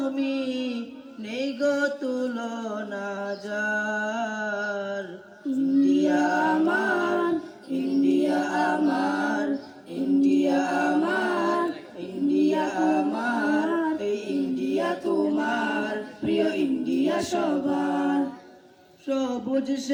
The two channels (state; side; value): identical; both; correlation 1.00